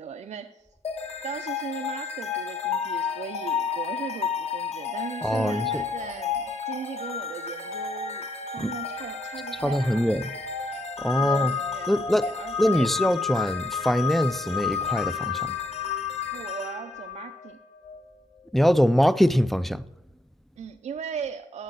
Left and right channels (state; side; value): normal; both; correlation 0.75